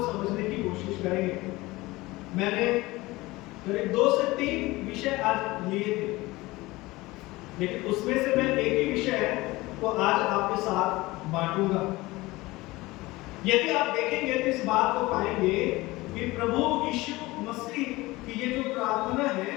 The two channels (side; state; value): right; quieter; 20.5 dB